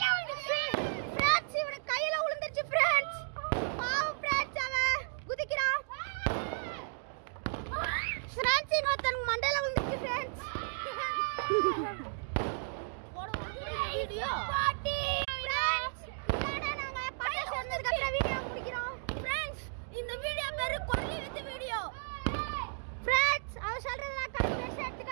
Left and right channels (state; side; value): silent; left; digital silence